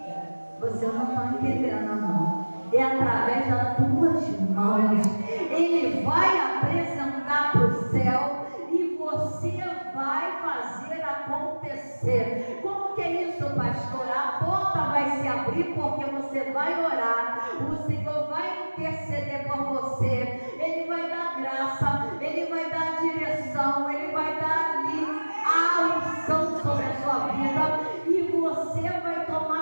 Você não está entendendo, não. É através das tuas mãos. Ele vai apresentar para o céu e você vai fazer acontecer. Como que é isso, pastor? A porta vai se abrir porque você vai orar. O Senhor vai interceder por você. Ele vai dar graça, Ele vai dar direção, Ele vai dar ali a unção sobre a sua vida e você vai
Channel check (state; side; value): inverted; both; correlation -1.00